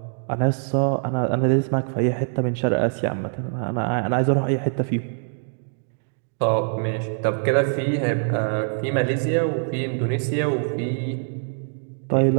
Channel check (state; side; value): silent; left; digital silence